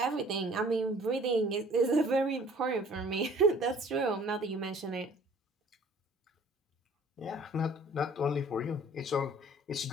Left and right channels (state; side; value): normal; both; correlation 0.53